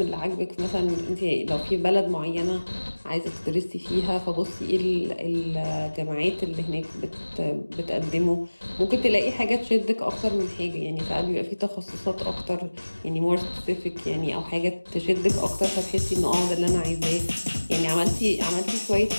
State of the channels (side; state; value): both; inverted; correlation -1.00